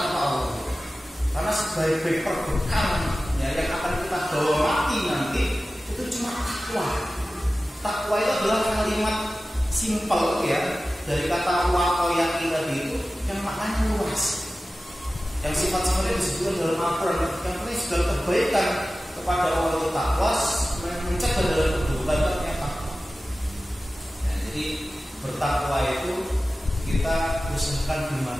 Allah. Karena sebagai perbekalan ya, yang akan kita bawa mati nanti itu cuma takwa. Takwa itu adalah kalimat simpel ya, dari kata waqoyah tadi itu yang maknanya luas. Yang sifat-sifatnya disebutkan dalam Al-Quran, yang penting segala kebaikan kepada Allah itu takwa, mencegah dalam keburukan takwa. Nah, jadi bertakwa itu kita usahakan di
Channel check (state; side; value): normal; both; correlation 0.95